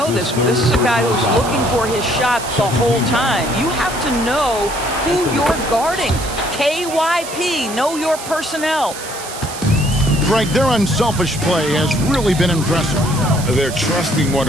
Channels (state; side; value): noise; right; hiss, 11 dB below the sound